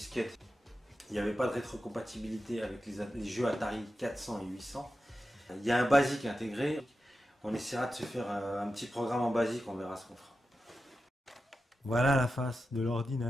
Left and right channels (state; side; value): normal; both; correlation 0.91